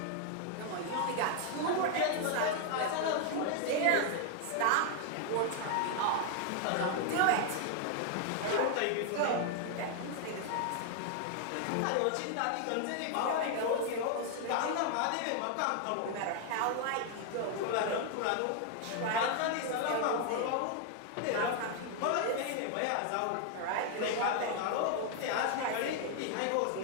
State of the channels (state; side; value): different; both; correlation 0.00